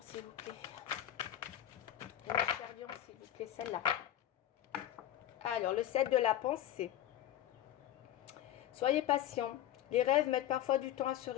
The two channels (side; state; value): right; quieter; 12.1 dB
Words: s'il vous plaît. Et mes chers lions, s'il vous plaît, celle-là. Alors, le 7 de la pensée. Soyez patient. Les rêves mettent parfois du temps à se